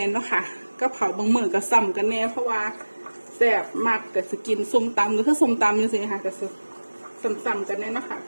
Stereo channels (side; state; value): both; inverted; correlation -1.00